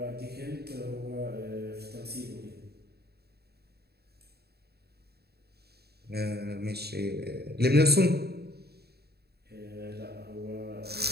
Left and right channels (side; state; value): left; late; 0.47 ms